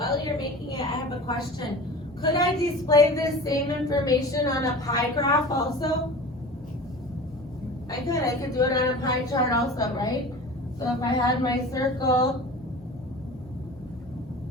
you're making it, I have a question. Could I display this same information on a pie graph also? I could do it on a pie chart also, right? So if I had my circle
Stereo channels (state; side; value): normal; both; correlation 0.37